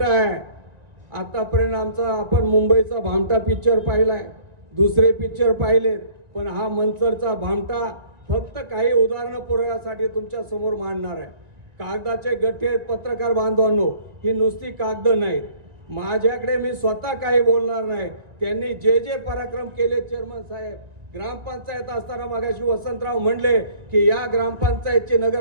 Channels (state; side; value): late; left; 1.9 ms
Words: आहे. आतापर्यंत आमचा आपण मुंबईचा भामटा पिक्चर पाहिलाय, दुसरे पिक्चर पाहिलेत, पण हा मंचरचा भामटा फक्त काही उदाहरणं पुरवण्यासाठी तुमच्या समोर मांडणार आहे. कागदाचे गठ्ठे पत्रकार बांधवांनो, ही नुसती कागद नाहीत. माझ्याकडे मी स्वतः काही बोलणार नाही. त्यांनी जे जे पराक्रम केले चेअरमन साहेब, ग्रामपंचायत असताना मगाशी वसंतराव म्हणले की या ग्रामपंचायतची